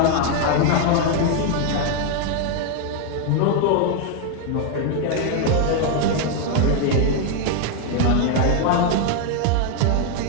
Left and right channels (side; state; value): both; different; correlation 0.01